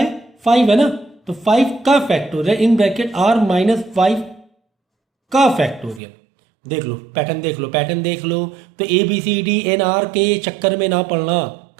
5 है ना, तो 5 का factorial in bracket r minus 5 का फैक्टोरियल। देख लो पैटर्न, देख लो पैटर्न देख लो। तो A B C D n r के चक्कर में ना पड़ना,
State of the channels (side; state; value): left; drops out; at 6.0 s